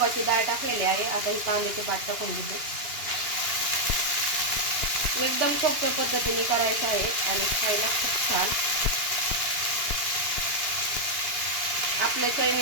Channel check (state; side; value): late; left; 2.8 ms